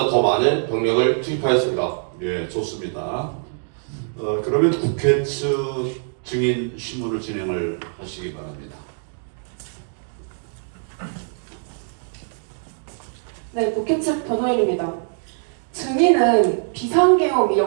더 많은 병력을 투입하였습니다. 예, 좋습니다. 그러면 국회 측 증인 신문을 진행을 하시기 바랍니다. 네, 국회 측 변호인입니다. 증인은 비상계엄이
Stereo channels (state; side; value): silent; left; 64 dB below the other